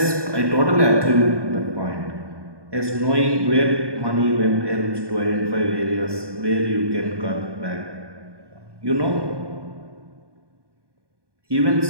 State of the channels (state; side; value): late; left; 1.2 ms